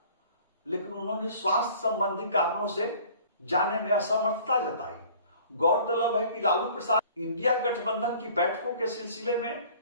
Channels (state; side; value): inverted; both; correlation -0.50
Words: लेकिन उन्होंने स्वास्थ्य संबंधी कारणों से जाने में असमर्थता जताई। गौरतलब है कि लालू प्रसाद इंडिया गठबंधन की बैठकों के सिलसिले में